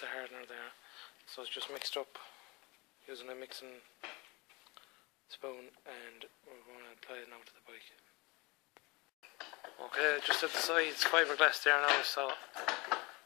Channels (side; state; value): right; quieter; 25.5 dB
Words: hardener there. So it's just mixed up using a mixing spoon, and we're going to apply it now to the bike. Okay, just at the sides fiberglass there now, so